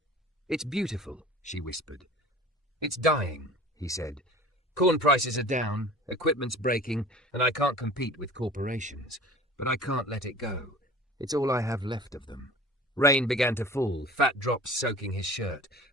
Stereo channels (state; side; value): normal; both; correlation 0.43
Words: "It's beautiful," she whispered. "It's dying," he said. "Corn prices are down, equipment's breaking, and I can't compete with corporations. But I can't let it go. It's all I have left of them." Rain began to fall, fat drops soaking his shirt.